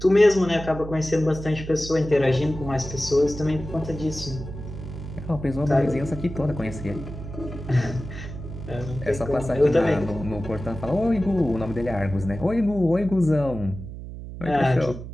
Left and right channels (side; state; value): right; noise; hum, 10 dB below the sound